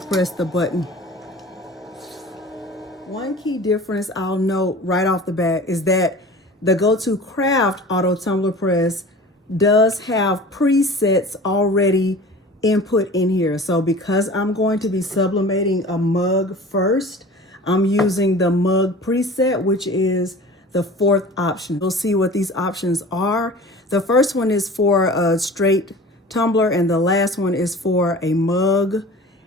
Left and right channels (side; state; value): both; normal; correlation 0.40